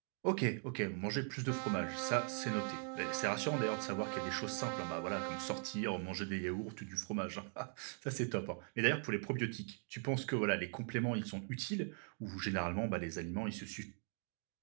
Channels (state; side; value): silent; left; 51 dB below the other